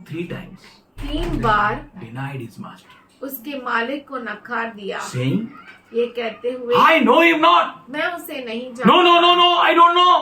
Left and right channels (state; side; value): identical; both; correlation 1.00